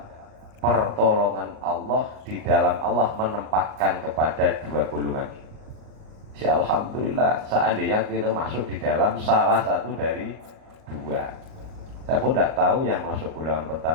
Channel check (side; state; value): left; late; 38 ms